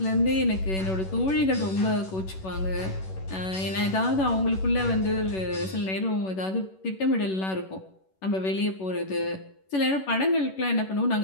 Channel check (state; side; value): late; right; 11 ms